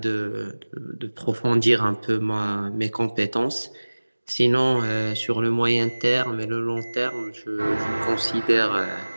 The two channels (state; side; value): inverted; both; correlation -1.00